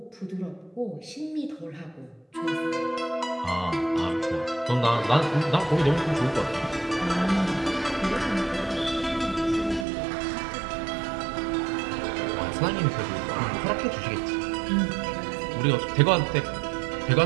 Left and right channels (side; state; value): left; drops out; at 9.9 s